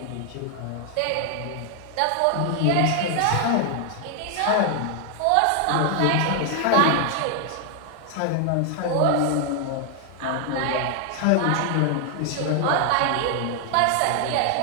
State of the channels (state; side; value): different; both; correlation 0.00